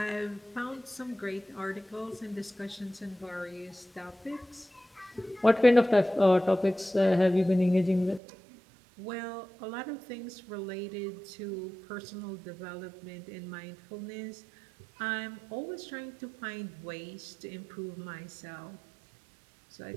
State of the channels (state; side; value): drops out; left; at 8.2 s